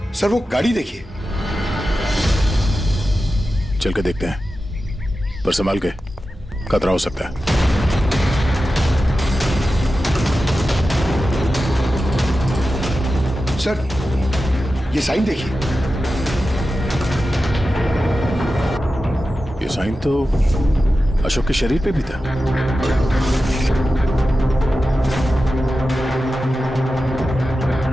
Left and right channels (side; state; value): both; normal; correlation 0.93